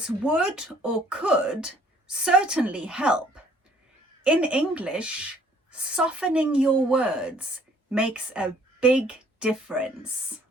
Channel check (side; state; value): both; normal; correlation 0.59